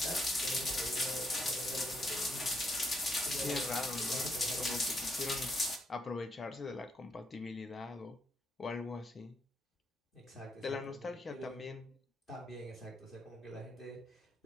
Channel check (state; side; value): normal; both; correlation 0.75